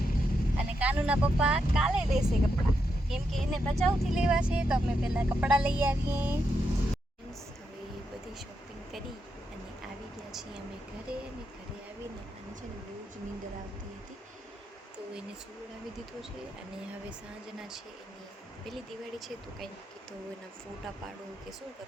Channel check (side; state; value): both; normal; correlation 0.83